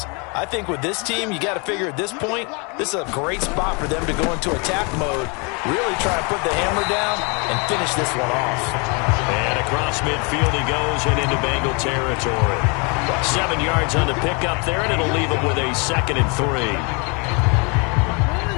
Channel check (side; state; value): right; quieter; 32.5 dB